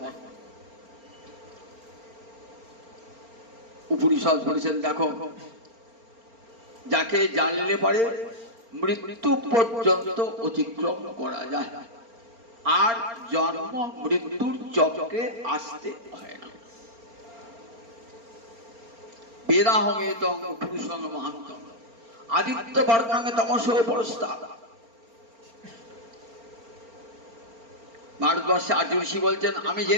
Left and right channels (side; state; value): left; late; 4.4 ms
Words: নাই। উপনিষদ বলেছেন, দেখো, যাকে জানলে পারে মৃত্যু পর্যন্ত অতিক্রম করা যায়, আর জন্ম মৃত্যুর চক্রে আসতে হয় না। বেদাহমেতং পুরুষং মহান্তং আদিত্য বর্ণাঙ্গে তমসো পরস্তাৎ। ভারতবর্ষে আর্য ঋষি বলছেন, আমি